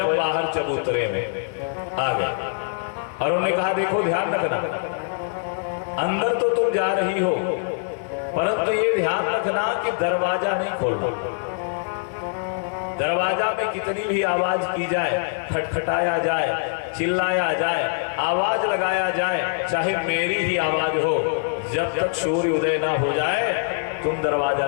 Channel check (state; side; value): silent; right; 63 dB below the other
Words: बाहर चबूतरे में आ गए और उन्होंने कहा, देखो ध्यान रखना, अंदर तो तुम जा रही हो, परंतु ये ध्यान रखना कि दरवाजा नहीं खोलना। दरवाजा में कितनी भी आवाज की जाए, खटखटाया जाए, चिल्लाया जाए, आवाज लगाया जाए, चाहे मेरी ही आवाज हो, जब तक सूर्य उदय ना हो जाए तुम दरवाजा